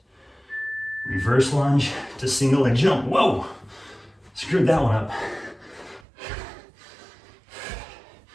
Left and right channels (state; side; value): drops out; left; at 6.1 s